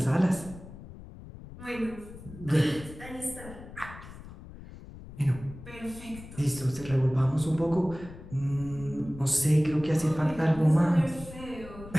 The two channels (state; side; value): noise; left; rumble, 15 dB below the sound